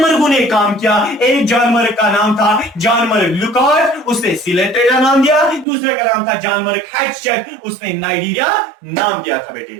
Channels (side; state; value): left; drops out; at 5.7 s